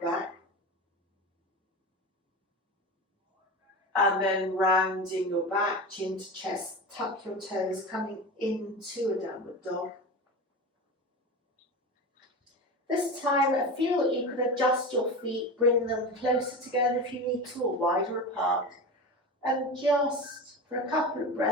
And then rounding your back, chin to chest, tuck your toes, coming into a downward dog. This time, feel that you can adjust your feet, bring them closer together if you need to, or wider apart. And just, for a couple of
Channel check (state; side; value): normal; both; correlation 0.26